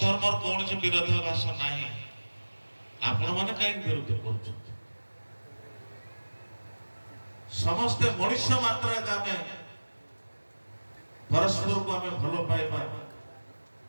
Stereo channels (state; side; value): inverted; both; correlation -1.00